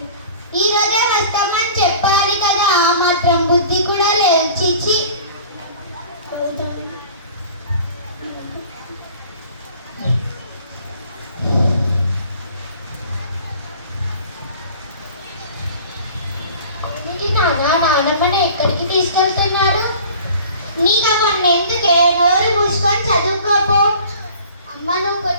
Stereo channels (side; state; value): both; inverted; correlation -0.45